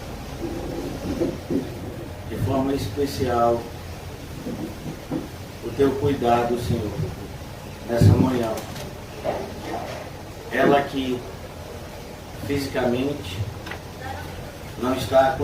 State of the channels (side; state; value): both; identical; correlation 1.00